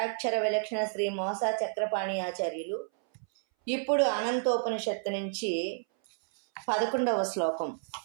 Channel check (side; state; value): left; silent; 57 dB below the other